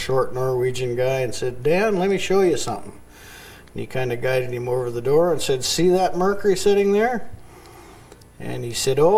Norwegian guy, and said, Dan, let me show you something. And he kind of guided him over the door and said, see that Mercury sitting there? And he said,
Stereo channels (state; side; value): identical; both; correlation 1.00